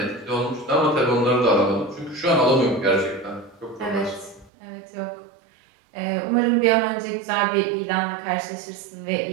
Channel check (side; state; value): left; drops out; at 4.5 s